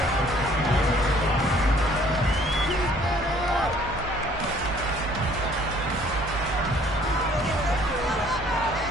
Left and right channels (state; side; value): normal; both; correlation 0.58